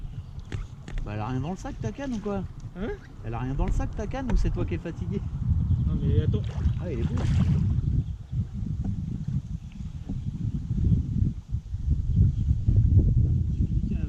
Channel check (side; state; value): both; identical; correlation 1.00